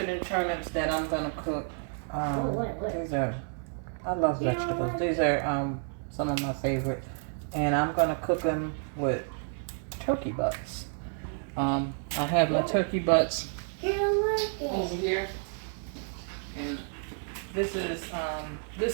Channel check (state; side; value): silent; left; 58 dB below the other